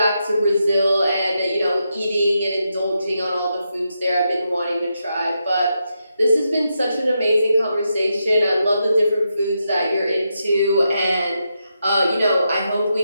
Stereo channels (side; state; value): both; inverted; correlation -0.84